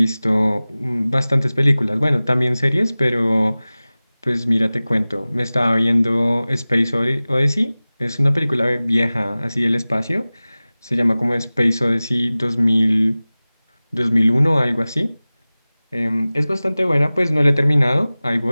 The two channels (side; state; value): both; inverted; correlation -0.98